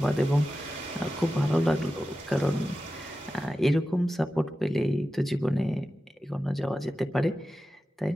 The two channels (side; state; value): both; normal; correlation 0.93